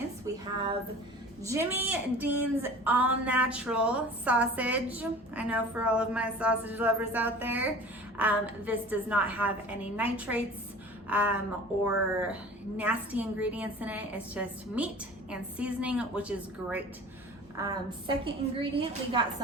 We have Jimmy Dean's all natural sausage. I know for all of my sausage lovers out there, this does not have any nitrates or nasty ingredients in it. It's just meat and seasoning, which is great. Second ingredient, we got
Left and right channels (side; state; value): both; normal; correlation 0.42